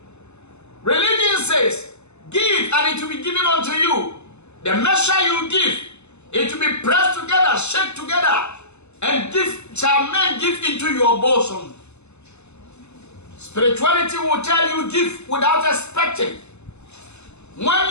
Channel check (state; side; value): late; right; 0.81 ms